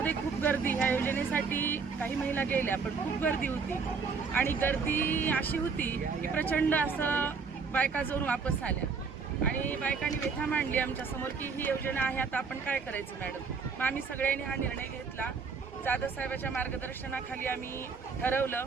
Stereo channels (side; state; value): left; quieter; 5.3 dB